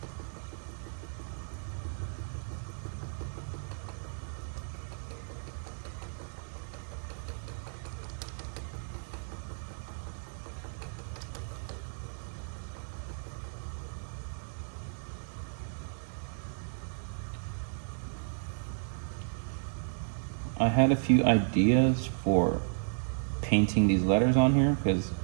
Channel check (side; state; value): left; silent; digital silence